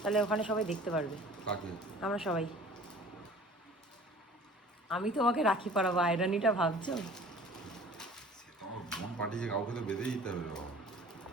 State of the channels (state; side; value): normal; both; correlation 0.47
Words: তাহলে ওখানে সবাই দেখতে পারবে। আমরা সবাই, আমি তোমাকে রাখি পরাবো, আয়রানিটা ভাবছো? পাঠিয়েছে, কাউকে তো বেঁধে দিতে হবে।